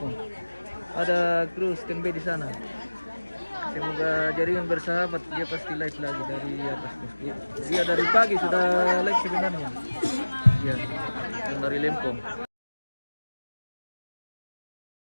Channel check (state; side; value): inverted; both; correlation -1.00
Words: Ada kru standby di sana. Semoga jaringan bersahabat. Dia pasti live lagi dari atas. Dia dari pagi sudah live sebenarnya. Ya, yang dari lempo.